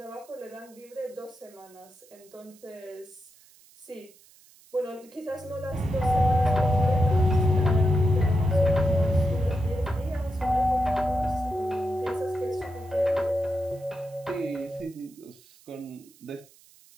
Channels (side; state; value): right; noise; hiss, 26 dB below the sound